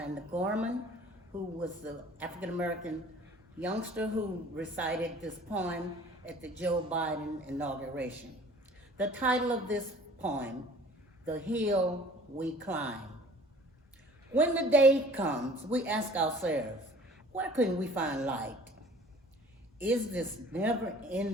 Gorman, who was the African American youngster who recited this poem at the Joe Biden inauguration. The title of this poem, The Hill We Climb. When the day comes, we ask ourselves, where can we find light? Is this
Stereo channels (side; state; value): both; normal; correlation 0.50